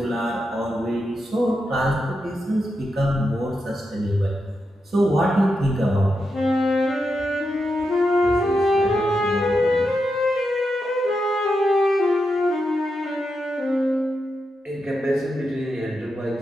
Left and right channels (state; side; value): normal; both; correlation 0.86